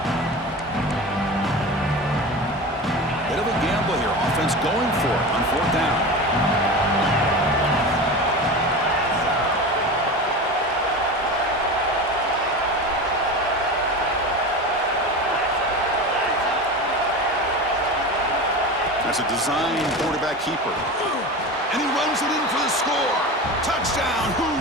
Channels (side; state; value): both; normal; correlation 0.28